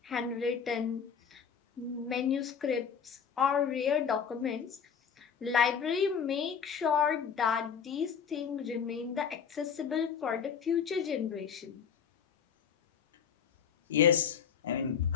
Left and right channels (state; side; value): quieter; right; 7.2 dB